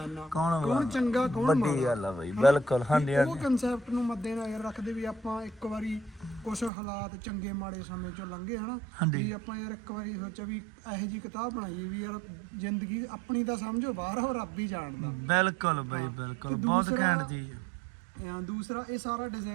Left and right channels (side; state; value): left; drops out; at 6.7 s